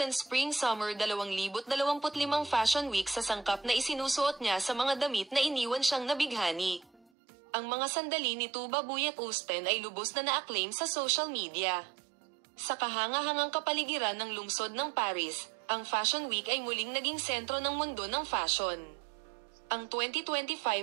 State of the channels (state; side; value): drops out; left; at 7.1 s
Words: Spring Summer 2025 Fashion Week, sa sangkap na isinusuot niya sa mga damit na iniwan siyang nabighani. Ang mga sandali ni Tuba Buyak-Usten ay lubos na na-acclaim sa social media. Sa kahanga-hangang kapaligiran ng lungsod ng Paris, ang Fashion Week ay muling naging sentro ng mundo ng fashion. Ang